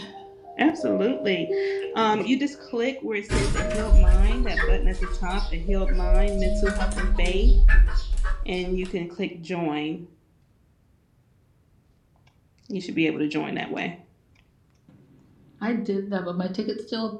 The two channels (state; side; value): identical; both; correlation 1.00